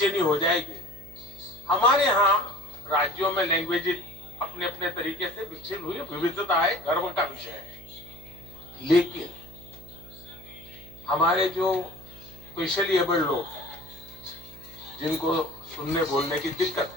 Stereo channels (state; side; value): noise; right; hum, 18 dB below the sound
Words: हो जाएगी। हमारे यहाँ राज्यों में लैंग्वेज अपने अपने तरीके से विकसित हुई, विविधता है, गर्व का विषय है। लेकिन हमारे जो स्पेशली एबल्ड लोग हैं, जिनको सुनने बोलने की दिक्कत